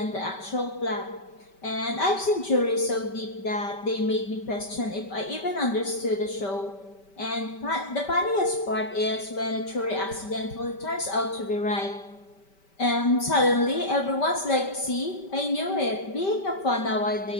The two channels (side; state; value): right; late; 5.1 ms